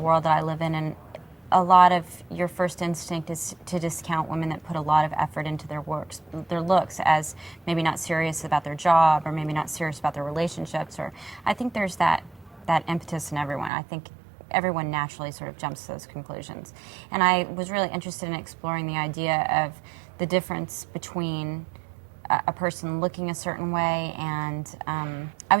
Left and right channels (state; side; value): drops out; left; at 13.7 s